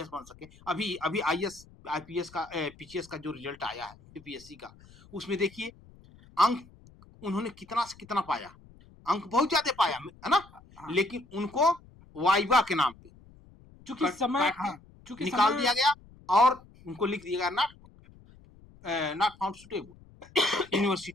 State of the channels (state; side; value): noise; left; rumble, 24 dB below the sound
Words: बन सके, अभी आईएएस आईपीएस का पीसीएस का जो रिजल्ट आया है यूपीएससी का, उसमें देखिए अंक उन्होंने कितना से कितना पाया, अंक बहुत ज्यादा पाया, है ना, लेकिन उनको वाइवा के नाम पे चूंकि समय, हाँ, चूंकि निकाल दिया गया और उनको लिख दिया गया नॉट फाउंड सुटेबल।